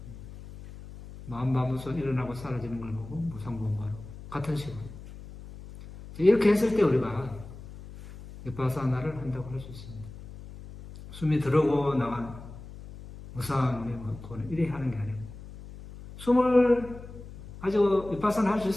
마음마무소 일어나고 사라지는 걸 보고 무상고무화로 같은 식으로 이렇게 했을 때 우리가 윗바사나를 한다고 할 수 있습니다. 숨이 들어오고 나간 무상의 고는 이래 하는 게 아니고 숨을 가지고 윗바사나 할 수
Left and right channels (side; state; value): left; noise; hum, 15 dB below the sound